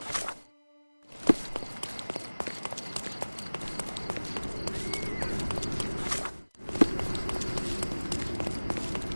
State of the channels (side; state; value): both; inverted; correlation -1.00